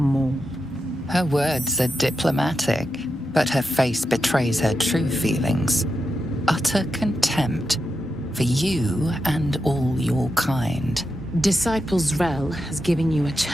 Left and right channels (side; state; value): both; normal; correlation 0.88